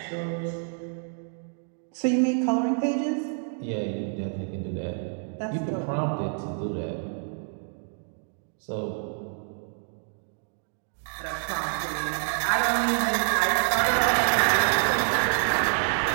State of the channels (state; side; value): silent; left; 58 dB below the other